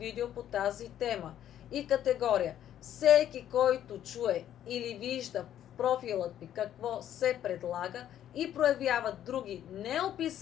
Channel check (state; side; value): quieter; right; 11.0 dB